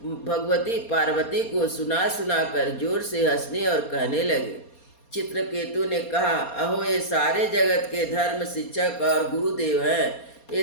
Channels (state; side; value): late; right; 4.2 ms